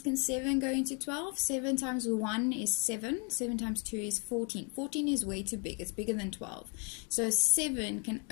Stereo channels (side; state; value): right; quieter; 35.0 dB